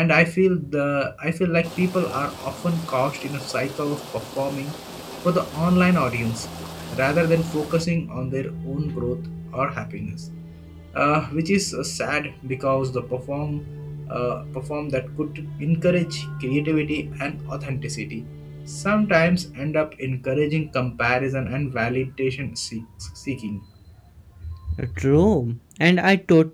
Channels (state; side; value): identical; both; correlation 1.00